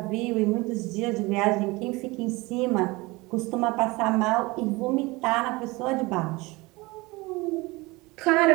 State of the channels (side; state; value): left; quieter; 23.2 dB